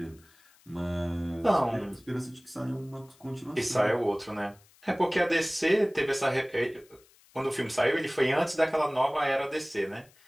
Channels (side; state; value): left; noise; hiss, 29 dB below the sound